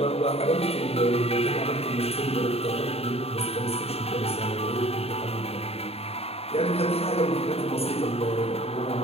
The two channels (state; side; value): late; right; 0.29 ms